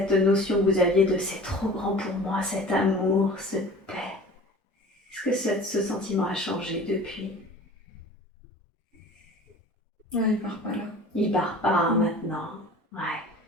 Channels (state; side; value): normal; both; correlation 0.42